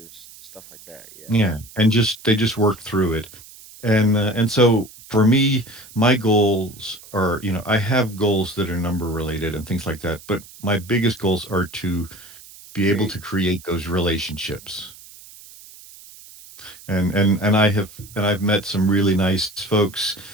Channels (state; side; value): noise; right; hiss, 20 dB below the sound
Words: stuff like that. Yeah. Yeah, and just they just work through it. And so for me, my goals are, I have goals that are number related and things like that, but my biggest goals are to be able Create. to create those relationships. And I've met some really nice folks